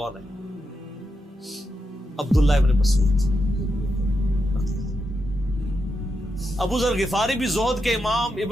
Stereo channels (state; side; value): normal; both; correlation 0.86